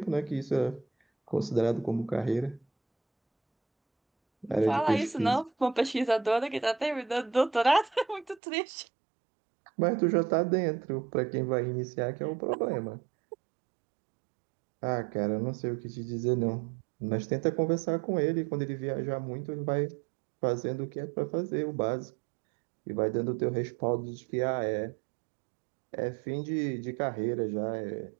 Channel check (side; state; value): left; drops out; at 8.4 s